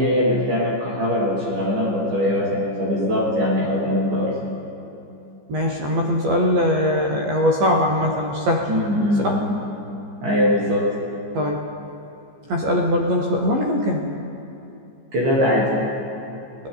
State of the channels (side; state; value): left; late; 15 ms